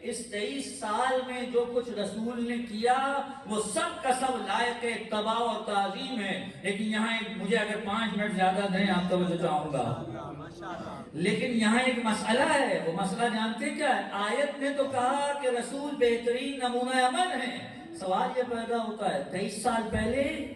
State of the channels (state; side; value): identical; both; correlation 1.00